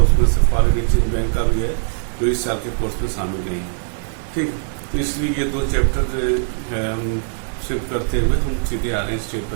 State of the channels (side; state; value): left; silent; digital silence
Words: उसमें से फॉरेन एक्सचेंज बैंक का भी है जो इस साल के कोर्स में शामिल नहीं है। ठीक, तो इसलिए ये 2 चैप्टर जो है हम शिफ्ट करते हुए हम सीधे आ रहे हैं स्टेट